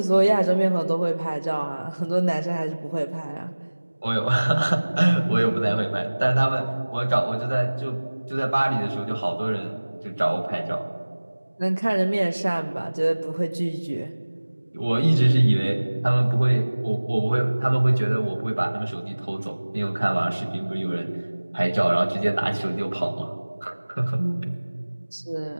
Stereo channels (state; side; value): inverted; both; correlation -1.00